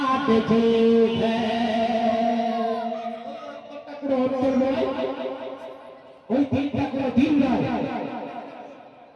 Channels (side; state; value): both; identical; correlation 1.00